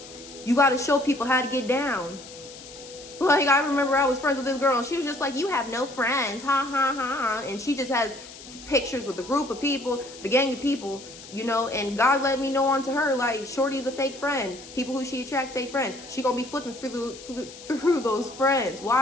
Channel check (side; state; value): left; noise; hiss, 17 dB below the sound